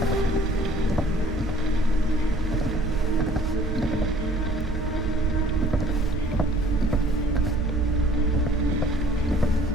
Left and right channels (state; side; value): normal; both; correlation 0.56